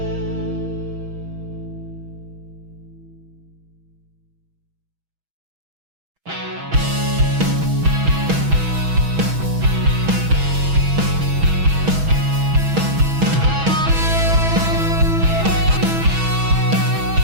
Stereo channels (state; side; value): late; left; 6.2 ms